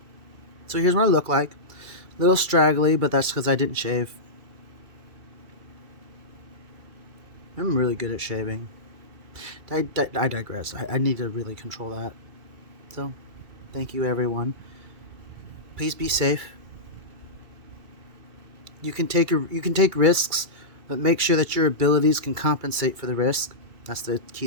So here's what I look like. A little straggly, but that's because I didn't shave. I'm really good at shaving. I digress. I need to really control that. So, thank you everyone. Please be safe. You can take risks, but make sure that your abilities can compensate for the risk. That's the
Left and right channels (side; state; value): left; late; 2.3 ms